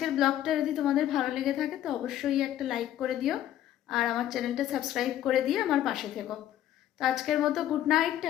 ব্লগটা যদি তোমাদের ভালো লেগে থাকে তো অবশ্যই একটা লাইক করে দিও আর আমার চ্যানেলটা সাবস্ক্রাইব করে দিয়ে আমার পাশে থেকো। তো আজকের মতো গুড নাইট,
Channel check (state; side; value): quieter; right; 12.0 dB